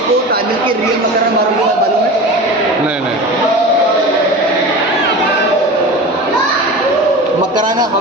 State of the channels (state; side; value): normal; both; correlation 0.32